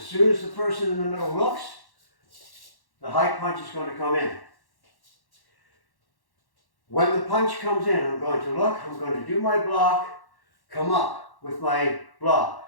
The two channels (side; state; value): right; late; 1.1 ms